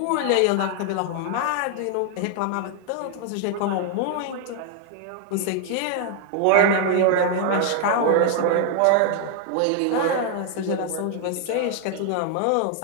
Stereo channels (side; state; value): both; different; correlation 0.00